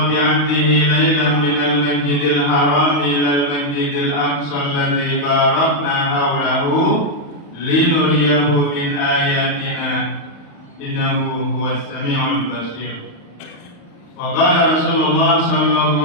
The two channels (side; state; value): right; late; 35 ms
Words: bi 'abdihi laylan minal masjidil haram ilal masjidil aqsa alladzi barakna hawlahu linuriyahu min ayatina innahu huwas sami'ul basir. Wa qala Rasulullah